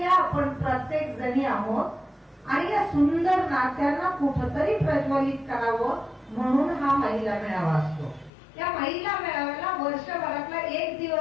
आपण प्रत्येक जणी आहोत, आणि या सुंदर नात्यांना कुठंतरी प्रज्वलित करावं म्हणून हा महिला मेळावा असतो. या महिला मेळाव्याला वर्षभरातला एक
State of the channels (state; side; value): drops out; right; at 8.3 s